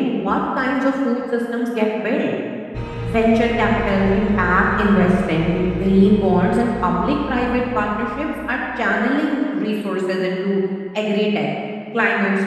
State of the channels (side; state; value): both; identical; correlation 1.00